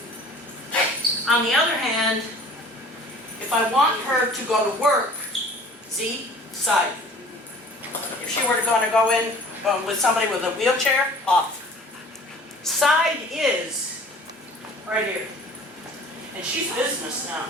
On the other hand, if I want her to go to work, Z, side. If she were to go in with somebody with a wheelchair, off. Side is right here. And she's business now.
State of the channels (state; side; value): normal; both; correlation 0.48